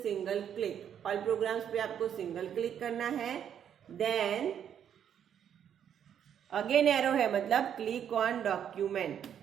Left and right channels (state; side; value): quieter; left; 9.0 dB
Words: single click. All programmes पे आपको सिंगल क्लिक करना है, देन अगेन एरो है मतलब क्लिक ऑन डॉक्यूमेंट।